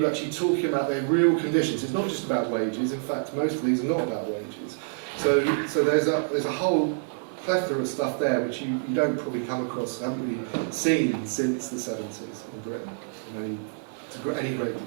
actually talking about their real conditions. It's not just about wages. In fact, most of these are not about wages. So there's a whole plethora of stuff there which you don't probably come across, haven't really seen since the 70s in Britain, to any great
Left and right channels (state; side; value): silent; left; digital silence